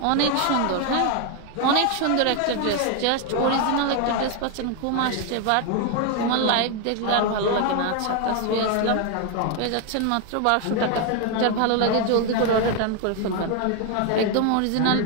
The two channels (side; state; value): both; different; correlation 0.01